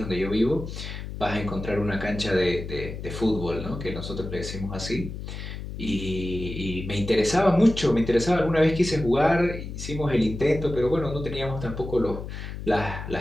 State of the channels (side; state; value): left; noise; hum, 8 dB below the sound